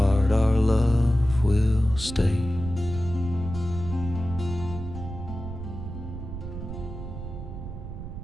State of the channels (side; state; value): right; noise; rumble, 9 dB below the sound